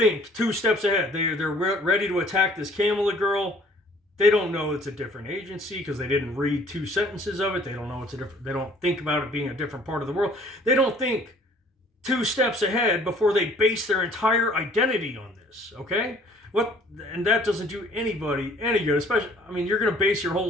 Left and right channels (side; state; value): both; normal; correlation 0.56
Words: 2 steps ahead. They're ready to attack this Kamila girl. They don't know it's a different agency because they didn't read 2 sentences of it. They don't know they don't think about it being a different part of the world. They don't think 2 steps ahead before they base their entire identity on this, okay? And that doesn't do anybody any good, especially, you're going to base your whole